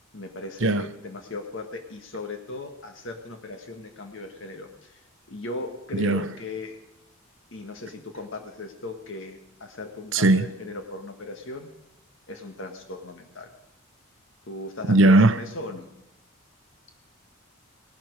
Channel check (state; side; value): normal; both; correlation 0.48